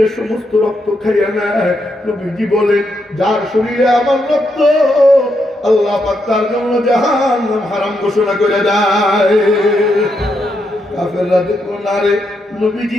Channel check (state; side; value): normal; both; correlation 0.80